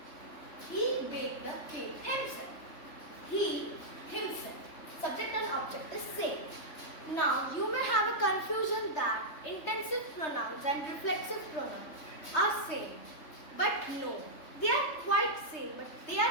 He baked the cake himself. He, himself. Subject and object is same. Now, you may have a confusion that intensive pronouns and reflexive pronouns are same. But no, they are quite same, but they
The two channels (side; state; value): right; late; 3.3 ms